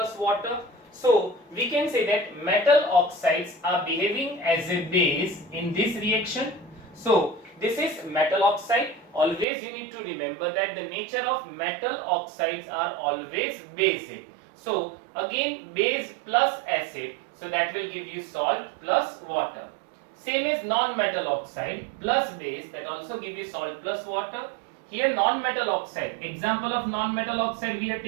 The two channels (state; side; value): drops out; left; at 9.5 s